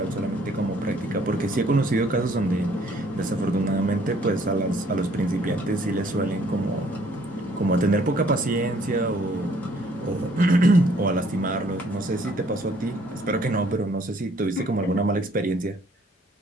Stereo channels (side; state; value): both; normal; correlation 0.61